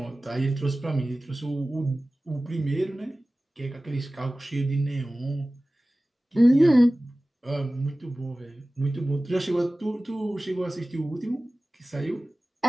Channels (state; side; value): normal; both; correlation 0.97